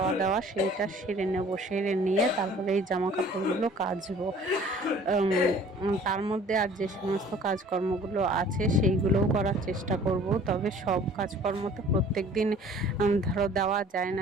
দাওয়া সেইটা সেরে নেব, সেরে নিয়ে তারপরে এই জামা কাপড়গুলো কাচবো। তার মধ্যে আর যে সমস্ত কাজকর্মগুলো আছে সেইগুলোও করার চেষ্টা করব। তবে সব কাজকর্ম তো প্রত্যেক দিন ধরো দেওয়া যায়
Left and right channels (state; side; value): normal; both; correlation 0.51